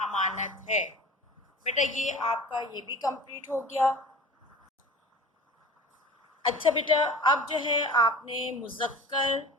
ہے۔ بیٹا یہ آپ کا یہ بھی کمپلیٹ ہو گیا۔ اچھا بیٹا اب جو ہے آپ نے مذکر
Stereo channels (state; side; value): normal; both; correlation 0.39